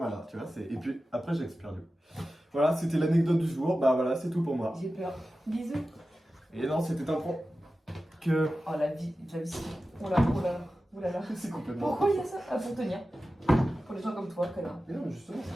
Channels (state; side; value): normal; both; correlation 0.94